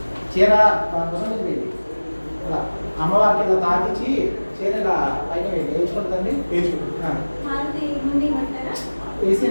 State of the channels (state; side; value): inverted; both; correlation -1.00